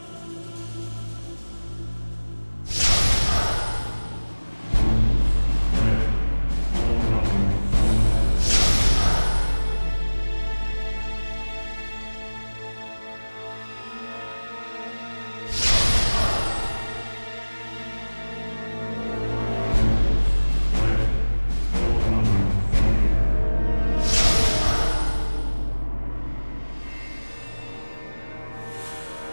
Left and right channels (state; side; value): inverted; both; correlation -1.00